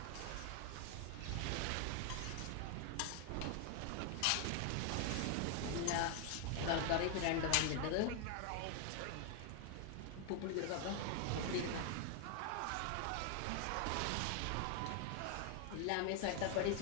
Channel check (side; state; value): both; different; correlation 0.00